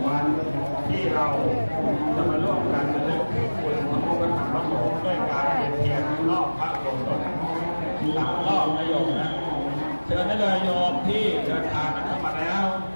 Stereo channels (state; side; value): inverted; both; correlation -1.00